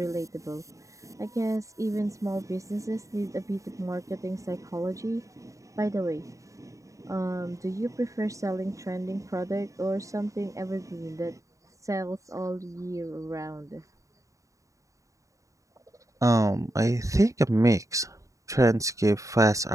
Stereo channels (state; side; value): late; left; 0.16 ms